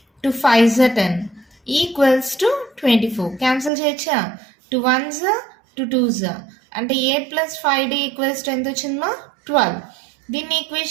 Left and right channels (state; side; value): drops out; left; at 3.7 s